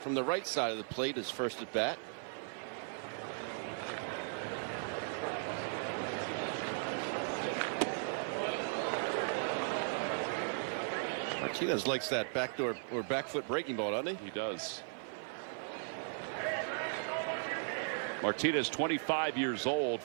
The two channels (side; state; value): left; silent; digital silence